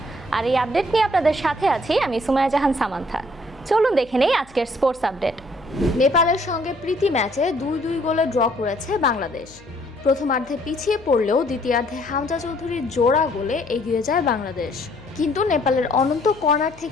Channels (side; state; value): left; noise; hum, 25 dB below the sound